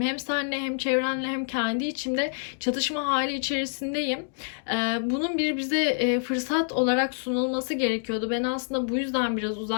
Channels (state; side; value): silent; right; digital silence